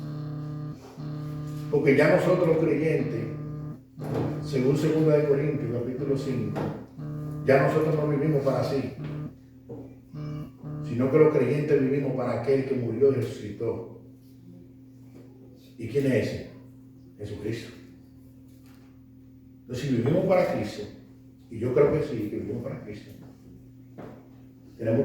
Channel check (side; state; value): both; identical; correlation 1.00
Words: Porque ya nosotros los creyentes, según 2 Corintios capítulo 5, ya nosotros no vivimos para sí, sino que los creyentes vivimos para aquel que murió y resucitó. ¿Y quién es ese? Jesucristo. Entonces, si vivimos para Cristo, y yo creo que sí, que vivimos para Cristo, tenemos